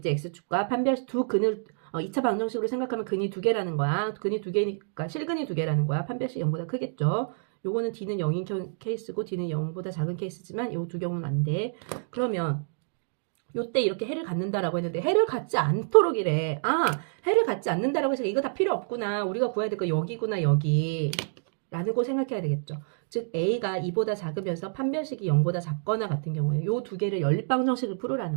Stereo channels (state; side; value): silent; left; digital silence